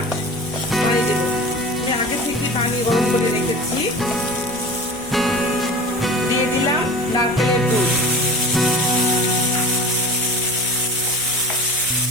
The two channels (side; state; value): right; noise; hum, 27 dB below the sound